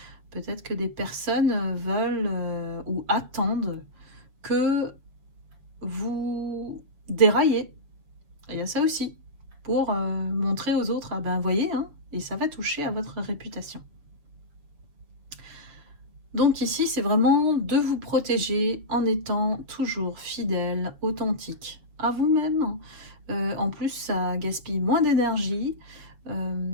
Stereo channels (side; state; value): left; late; 7.3 ms